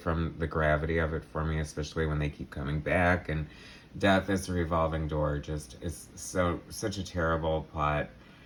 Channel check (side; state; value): both; identical; correlation 1.00